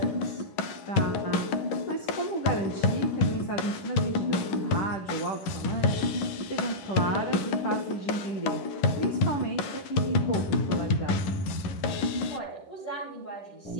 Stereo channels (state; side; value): late; right; 10 ms